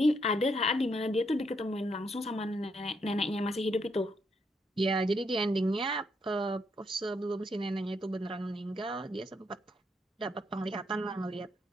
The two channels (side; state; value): both; normal; correlation 0.76